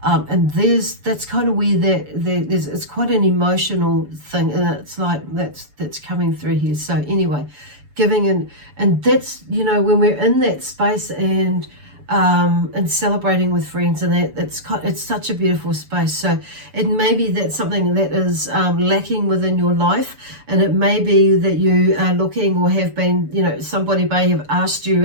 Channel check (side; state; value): left; late; 6.9 ms